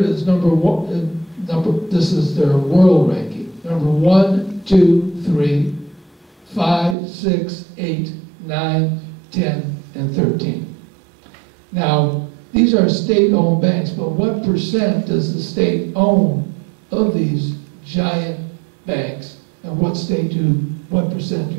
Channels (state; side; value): drops out; left; at 7.0 s